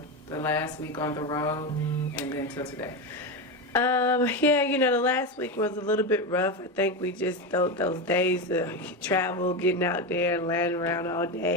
last week on the road and then till today? Yeah, the last week was a little bit rough. I think we just those days of travel, getting out there and laying around all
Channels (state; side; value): normal; both; correlation 0.15